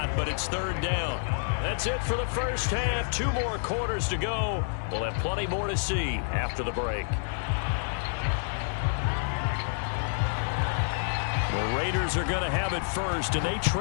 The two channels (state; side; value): silent; right; digital silence